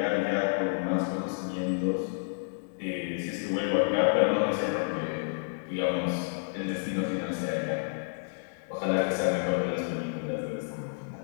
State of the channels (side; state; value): right; silent; digital silence